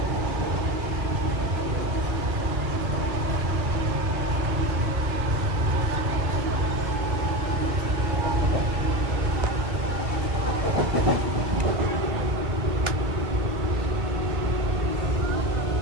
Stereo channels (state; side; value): late; left; 1.9 ms